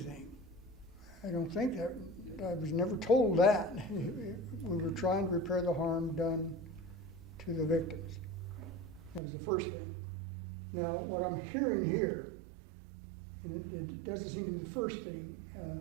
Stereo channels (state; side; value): drops out; left; at 9.2 s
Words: I don't think that. I was never told that. We were trying to repair the harm done to the victims. That was the first thing. Now, what I'm hearing here, and it doesn't seem to be the first thing